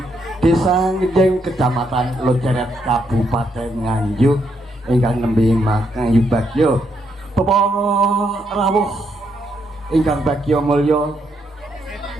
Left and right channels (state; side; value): normal; both; correlation 0.76